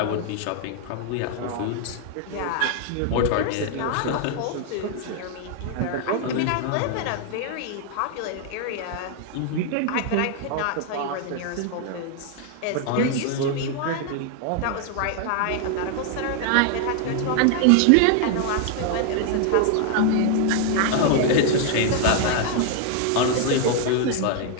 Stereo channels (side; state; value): both; different; correlation 0.00